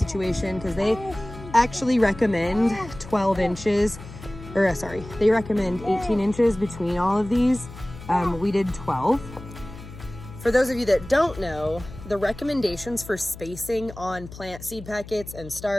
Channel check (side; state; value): left; noise; hum, 15 dB below the sound